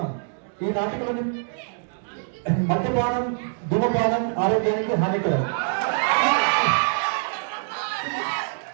ఈ నాటికలోని మద్యపానం, ధూమపానం ఆరోగ్యానికి హానికరం.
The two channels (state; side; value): silent; left; digital silence